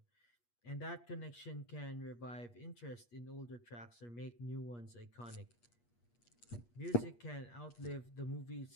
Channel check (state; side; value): late; right; 8.4 ms